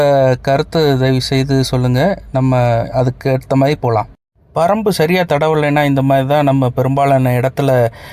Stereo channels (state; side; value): identical; both; correlation 1.00